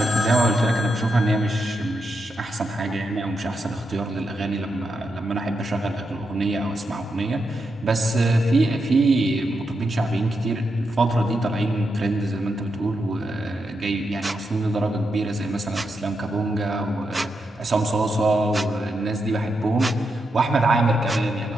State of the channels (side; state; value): both; normal; correlation 0.84